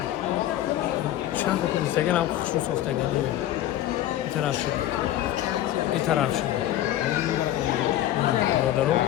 چند تا اینستاگرام هم خوشرو سوختگی میاد این طرف شد این طرف شد نه برادرو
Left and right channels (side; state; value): right; quieter; 13.1 dB